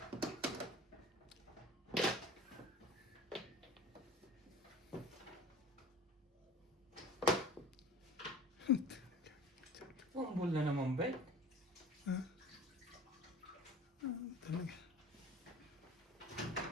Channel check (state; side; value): normal; both; correlation 0.41